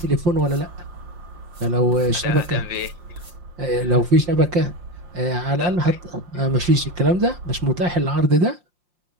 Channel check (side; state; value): left; late; 5.7 ms